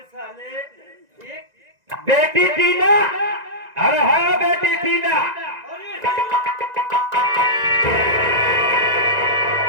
बेटी टीना, अरे हाँ बेटी टीना,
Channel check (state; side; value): late; left; 1.9 ms